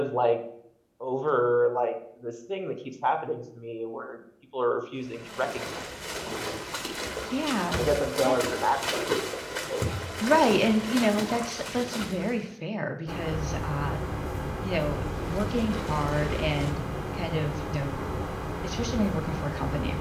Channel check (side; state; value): both; identical; correlation 1.00